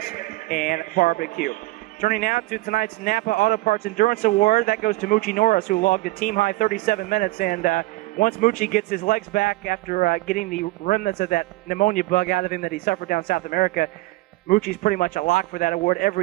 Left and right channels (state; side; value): quieter; left; 19.9 dB